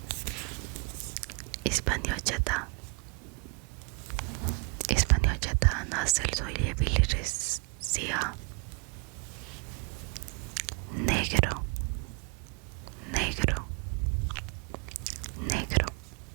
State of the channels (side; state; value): left; quieter; 34.6 dB